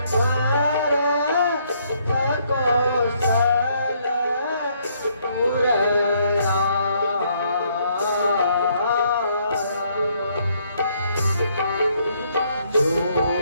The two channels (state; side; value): inverted; both; correlation -0.69